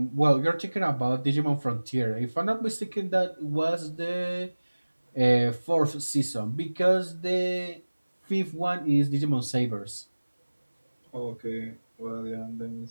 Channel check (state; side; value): inverted; both; correlation -1.00